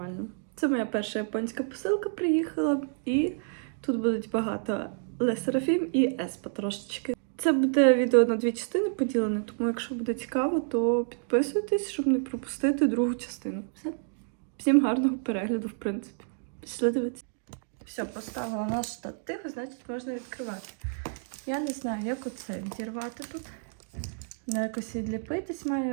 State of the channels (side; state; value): left; silent; digital silence